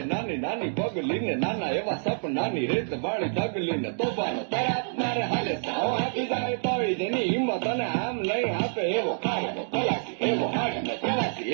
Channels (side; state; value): left; silent; digital silence